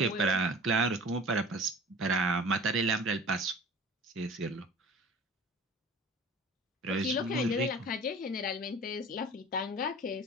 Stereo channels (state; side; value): normal; both; correlation 0.42